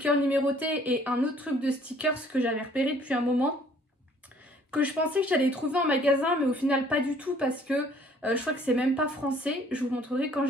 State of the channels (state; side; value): normal; both; correlation 0.58